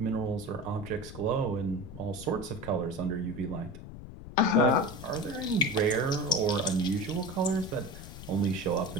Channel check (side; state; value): left; noise; rumble, 13 dB below the sound